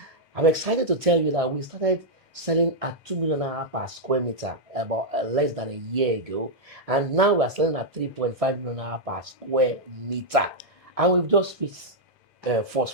I'm excited to tell you that we started selling at 2 million naira per square meter about less than a year ago, and now we're selling at 3.5 million naira per square meter, and we've just reached first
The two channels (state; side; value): normal; both; correlation -0.05